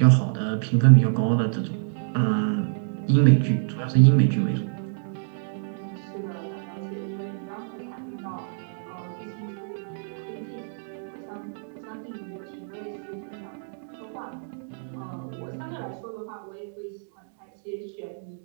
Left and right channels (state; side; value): silent; left; digital silence